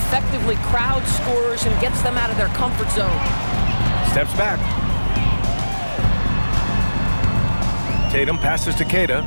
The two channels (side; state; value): both; inverted; correlation -1.00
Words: crowd scorers and gets them out of their comfort zone. Steps back. Tatum passes to Queta.